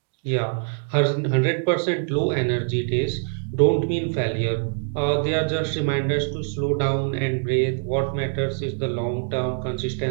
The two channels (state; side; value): silent; left; digital silence